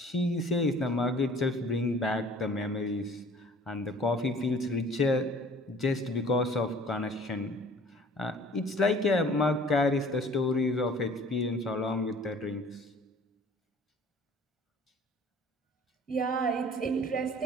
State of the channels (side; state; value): both; normal; correlation 0.50